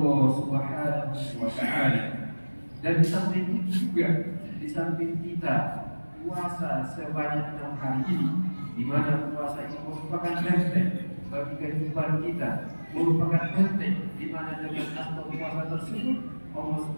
Allah Subhanahu wa Ta'ala. Dan di samping itu juga, di samping kita puasa sebanyak 6 hari ini, di mana puasa ini merupakan benteng bagi kehidupan kita, merupakan benteng di mana dengan asal puasa tersebut Allah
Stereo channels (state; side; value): inverted; both; correlation -1.00